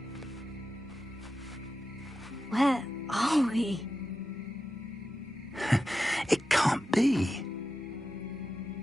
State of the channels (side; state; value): both; normal; correlation 0.91